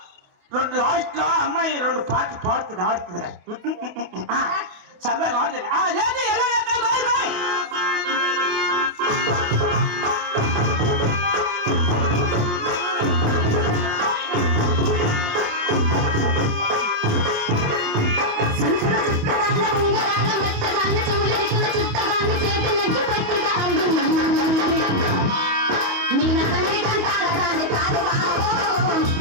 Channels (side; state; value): left; late; 28 ms